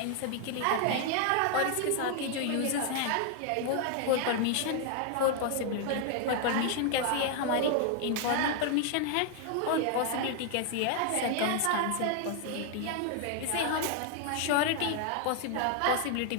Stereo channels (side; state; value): both; different; correlation 0.00